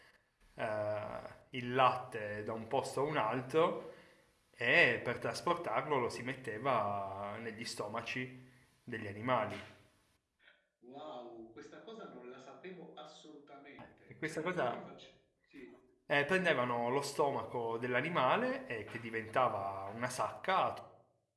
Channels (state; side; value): identical; both; correlation 1.00